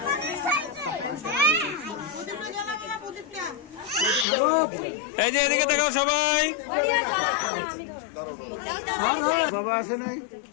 এই যে এদিকে দেখাও সবাই। বাবা আসে নাই,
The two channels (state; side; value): drops out; right; at 4.2 s